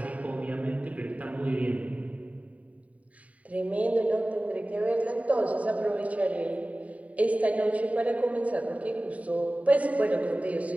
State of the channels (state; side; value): late; left; 0.069 ms